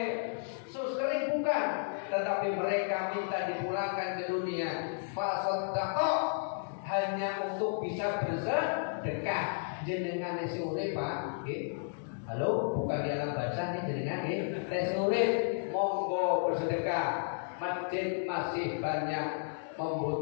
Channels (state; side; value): silent; right; digital silence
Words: sus kering, bukan. Tetapi mereka minta dipulangkan ke dunia. Fasadaqo, hanya untuk bisa bersedekah. Jenengan isi urip Pak, nggih. Halo, bukan di alam baca nih jenengan nggih. Tes urip monggo bersedekah. Masjid masih banyak